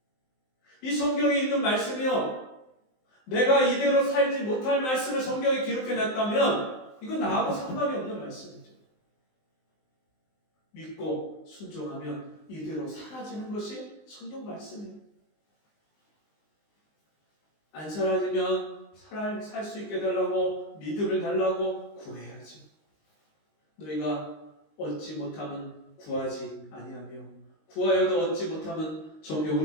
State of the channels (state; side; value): late; right; 19 ms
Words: 이 성경에 있는 말씀이요, 내가 이대로 살지 못할 말씀을 성경에 기록해놨다면 이건 나하고 상관이 없는 말씀이죠. 믿고 순종하면 이대로 사라지는 것이 성경 말씀이에요. 안 사라지면 살 수 있게 달라고, 믿음을 달라고 구해야지. 너희가 얻지 못하면 구하지 아니하며 구하여도 얻지 못하면